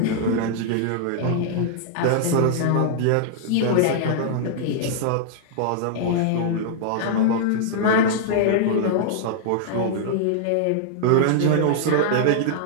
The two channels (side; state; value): both; different; correlation -0.01